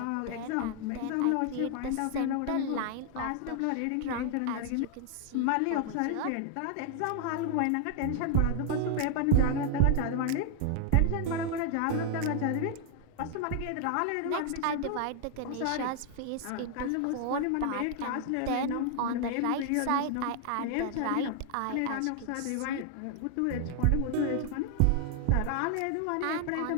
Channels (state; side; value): different; both; correlation 0.00